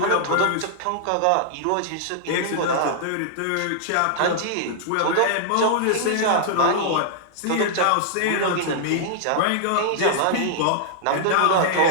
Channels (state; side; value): different; both; correlation -0.01